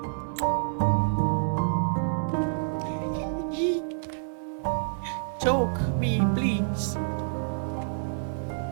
Choke me, please.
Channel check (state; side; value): silent; left; 59 dB below the other